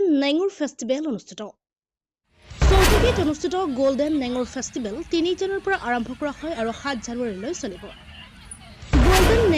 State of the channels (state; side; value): identical; both; correlation 1.00